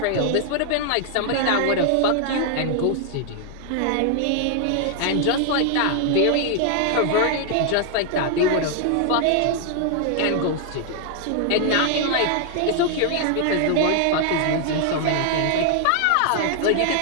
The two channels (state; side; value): different; both; correlation 0.00